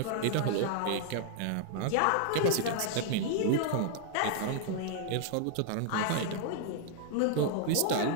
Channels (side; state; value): both; different; correlation 0.00